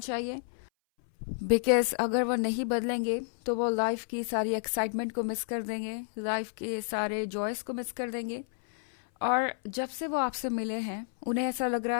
चाहिए। बिकॉज अगर वो नहीं बदलेंगे तो वो लाइफ की सारी एक्साइटमेंट को मिस कर देंगे, लाइफ के सारे जॉयस को मिस कर देंगे। और जब से वो आपसे मिले हैं उन्हें ऐसा लग रहा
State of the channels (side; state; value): right; silent; 58 dB below the other